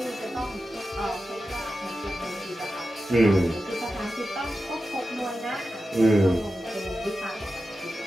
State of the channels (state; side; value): normal; both; correlation 0.92